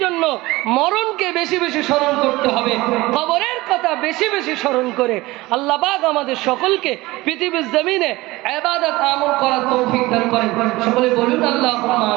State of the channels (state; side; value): quieter; left; 20.0 dB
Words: জন্য মরণকে বেশি বেশি স্মরণ করতে হবে, কবরের কথা বেশি বেশি স্মরণ করে আল্লাহ পাক আমাদের সকলকে পৃথিবীর জমিনে ইবাদত আমল করার তৌফিক দান করেন। সকলে বলুন আল্লাহুম্মা